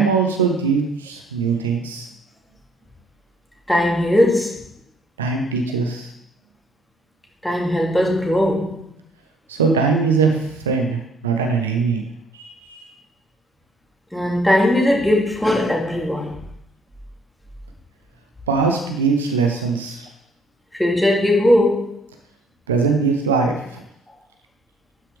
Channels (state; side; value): normal; both; correlation 0.64